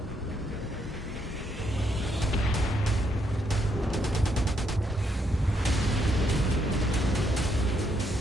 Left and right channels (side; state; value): both; normal; correlation 0.75